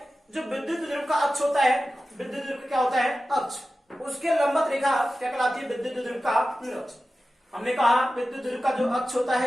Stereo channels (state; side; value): normal; both; correlation 0.94